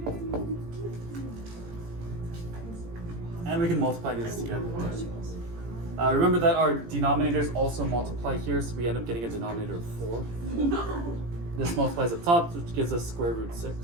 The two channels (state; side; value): late; left; 18 ms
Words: And we can multiply these together. Remember that our denominators also multiply here, so we end up getting a denominator of 4. This multiplies up top, which gives us square root